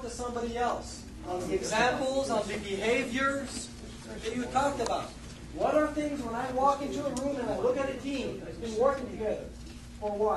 to somebody else on the examples, on the behaviors that you talked about. What are things when I walk into a room and I look at a team that's been working together for a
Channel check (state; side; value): identical; both; correlation 1.00